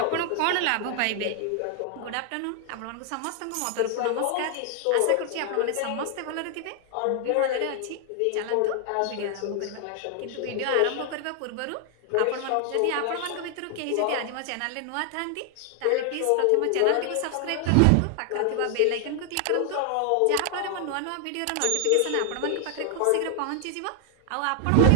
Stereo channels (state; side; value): different; both; correlation 0.00